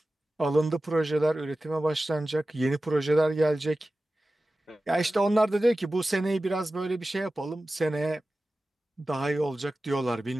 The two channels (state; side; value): normal; both; correlation 0.95